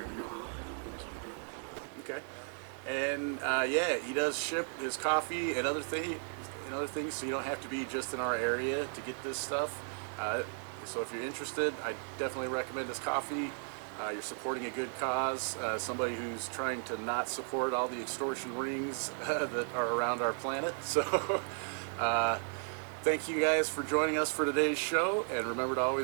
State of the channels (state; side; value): silent; left; 54 dB below the other